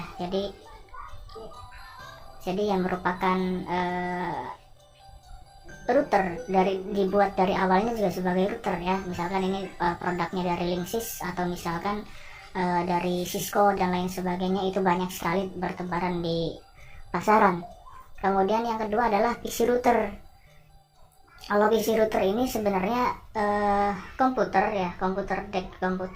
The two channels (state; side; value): identical; both; correlation 1.00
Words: jadi yang merupakan router dibuat dari awalnya juga sebagai router ya. Misalkan ini produknya dari Linksys atau misalkan dari Cisco dan lain sebagainya, itu banyak sekali bertebaran di pasaran. Kemudian yang kedua adalah PC router. Kalau PC router ini sebenarnya komputer